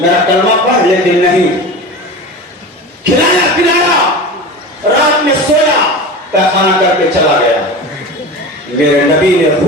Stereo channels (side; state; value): both; normal; correlation 0.31